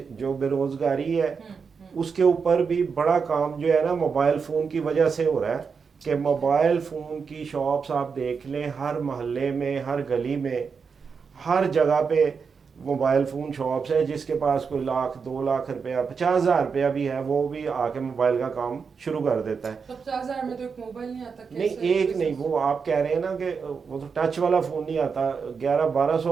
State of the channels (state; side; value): quieter; left; 5.7 dB